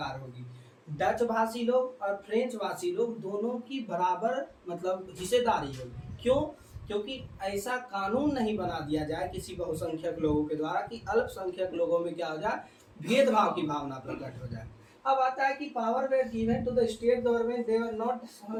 होगी, डच भाषी लोग और फ्रेंच भाषी लोग दोनों की बराबर मतलब हिस्सेदारी होगी। क्यों? क्योंकि ऐसा कानून नहीं बना दिया जाए किसी बहुसंख्यक लोगों के द्वारा कि अल्पसंख्यक लोगों में क्या हो जाए, भेदभाव की भावना प्रकट हो जाए। अब आता है कि power were given to the state government, they were not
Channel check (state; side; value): identical; both; correlation 1.00